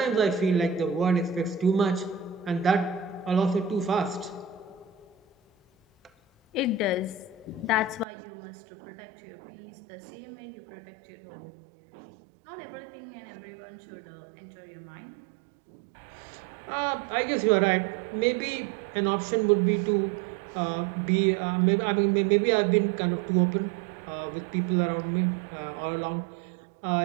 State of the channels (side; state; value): left; drops out; at 8.1 s